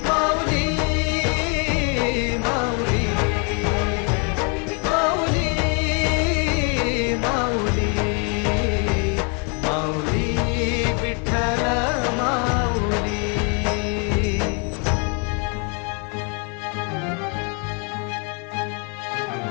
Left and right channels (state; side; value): quieter; right; 36.9 dB